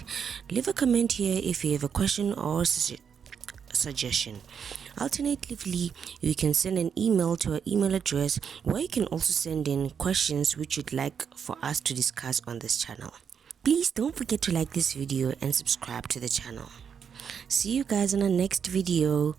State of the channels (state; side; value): quieter; left; 7.2 dB